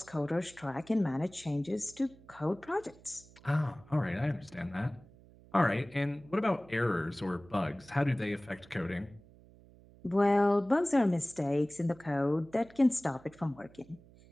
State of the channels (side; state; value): right; noise; hum, 24 dB below the sound